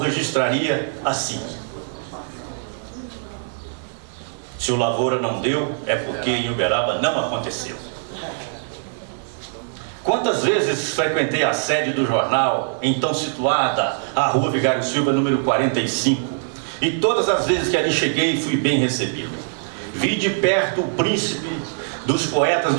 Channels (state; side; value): silent; left; 62 dB below the other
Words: assim. Se o Lavoura não deu, é porque em Uberaba não aconteceu. Quantas vezes frequentei a sede do jornal, então situada à Rua Vigário Silva, número 45, e todas as vezes que ali cheguei, fui bem recebido. Vi de perto o príncipe dos poetas